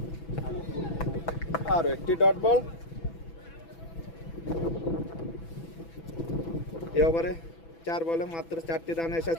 আর একটি ডট বল। এই ওভারে 4 বলে মাত্র 4টি রান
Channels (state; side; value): late; right; 6.0 ms